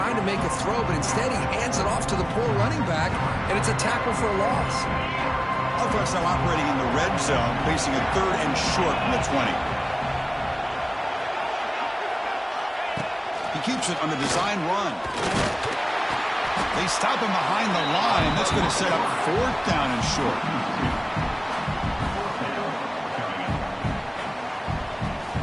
to make a throw, but instead he hands it off to the poor running back, and it's a tackle for a loss. Offense now operating in the red zone, facing a 3rd and short from the 20. He keeps it on the design run. They stop him behind the line. That's going to set up 4th down and short.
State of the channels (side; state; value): both; identical; correlation 1.00